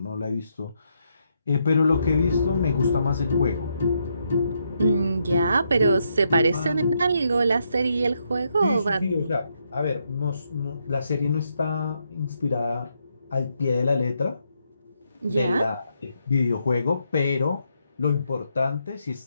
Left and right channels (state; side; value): inverted; both; correlation -0.78